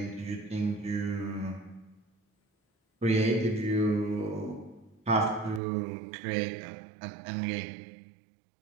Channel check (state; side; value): drops out; left; at 5.6 s